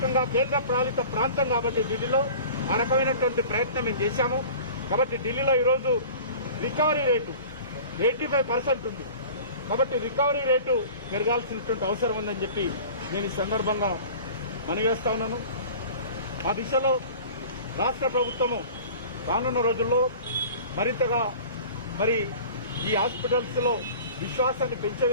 కేంద్ర పాలిత ప్రాంతం కాబట్టి ఢిల్లీలో ఆ రకమైనటువంటి ప్రయత్నం మేము చేశాము. కాబట్టి ఢిల్లీలో ఈరోజు రికవరీ రేటు 85% ఉంది. కాబట్టి రికవరీ రేటు పెరగాల్సినటువంటి అవసరం ఉందని చెప్పి నేను ఈ సందర్భంగా మనవేస్తా ఉన్నాను. ఆ దిశలో రాష్ట్ర ప్రభుత్వము రానున్న రోజుల్లో మరింతగా మరి ఈ హాస్పిటల్స్ లో విశ్వాసాన్ని పెంచే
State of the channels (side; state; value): both; inverted; correlation -0.41